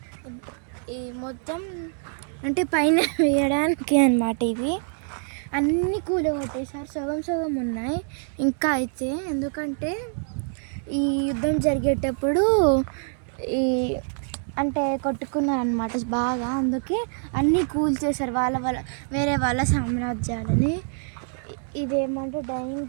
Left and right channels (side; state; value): left; silent; 58 dB below the other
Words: ఈ మొత్తం అంటే పైన వేయడానికి అన్నమాట. ఇవి అన్నీ కూలగొట్టేసారు, సగం సగం ఉన్నాయి ఇంకా అయితే. ఎందుకంటే ఈ యుద్ధం జరిగేటప్పుడు ఈ అంటే కొట్టుకున్నారు అనమాట బాగా, అందుకే అన్నీ కూల్చేశారు వేరే వాళ్ళ సామ్రాజ్యాలని. ఇదేమంటే డైనింగ్